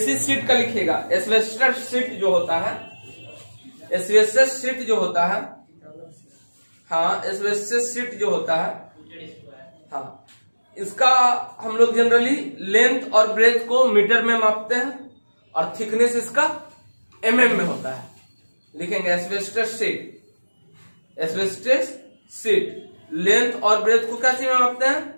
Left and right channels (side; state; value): both; inverted; correlation -1.00